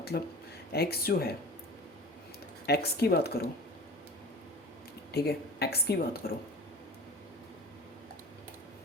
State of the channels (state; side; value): normal; both; correlation 0.37